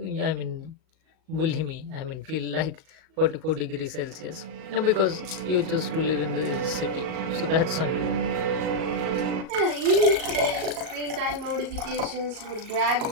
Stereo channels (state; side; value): late; left; 38 ms